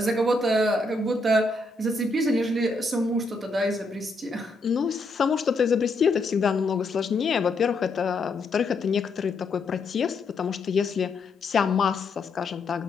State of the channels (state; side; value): quieter; right; 3.1 dB